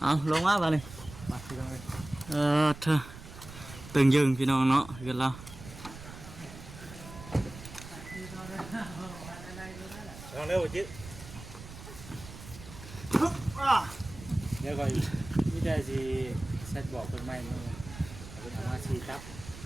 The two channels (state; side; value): noise; right; rumble, 14 dB below the sound